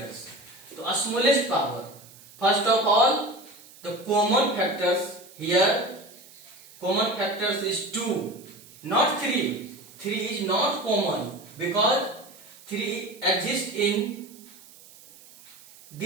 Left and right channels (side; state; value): right; noise; hiss, 22 dB below the sound